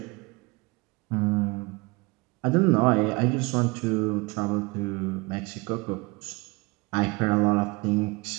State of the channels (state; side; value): quieter; left; 25.9 dB